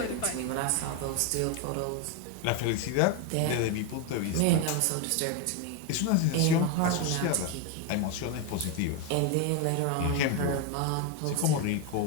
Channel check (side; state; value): both; different; correlation 0.02